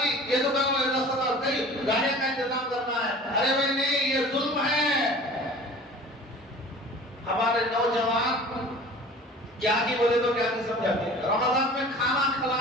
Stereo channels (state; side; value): normal; both; correlation 0.43